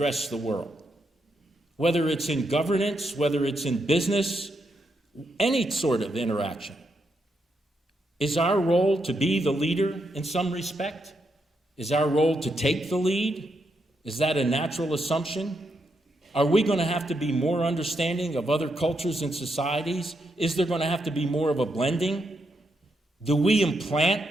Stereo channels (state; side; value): normal; both; correlation 0.81